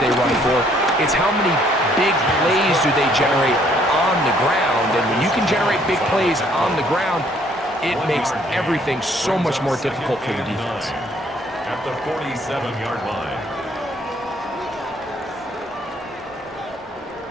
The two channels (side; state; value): both; normal; correlation 0.64